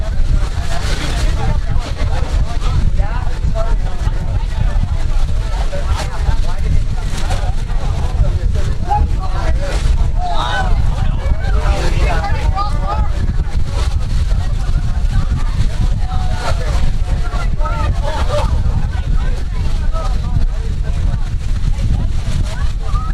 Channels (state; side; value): identical; both; correlation 1.00